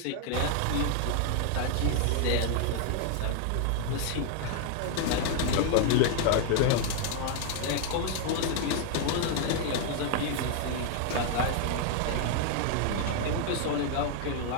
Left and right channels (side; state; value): both; different; correlation 0.00